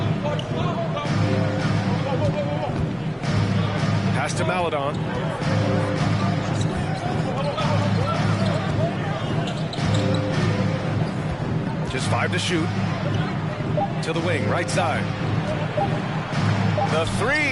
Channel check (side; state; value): both; identical; correlation 1.00